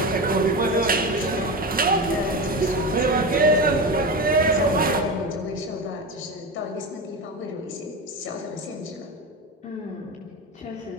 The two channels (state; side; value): normal; both; correlation 0.22